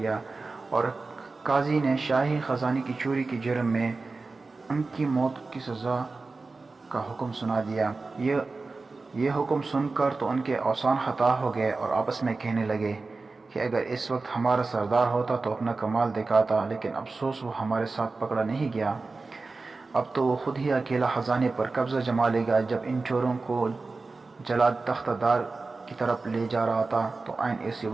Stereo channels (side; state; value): left; quieter; 3.8 dB